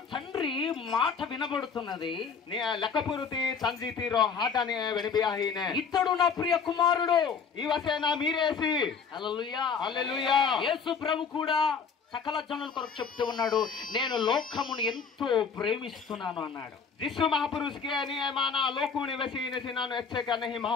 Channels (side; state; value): right; quieter; 5.9 dB